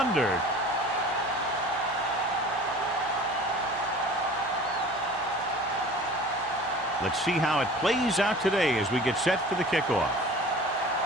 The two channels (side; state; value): both; normal; correlation 0.43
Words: Let's see how it plays out today as we get set for the kickoff.